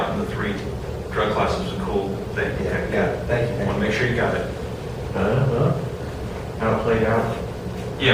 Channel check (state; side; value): identical; both; correlation 1.00